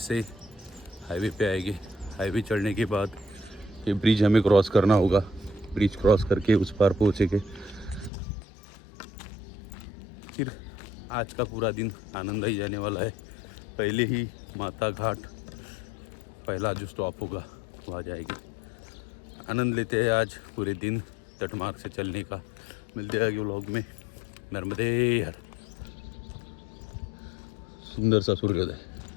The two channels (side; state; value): right; drops out; at 8.1 s